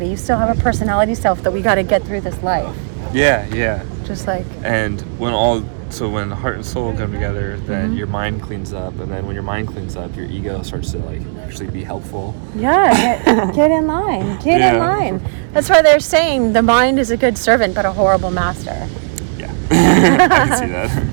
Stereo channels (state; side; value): silent; left; digital silence